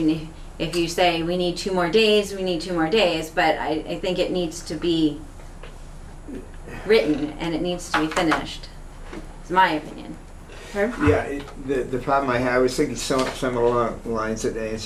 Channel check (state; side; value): identical; both; correlation 1.00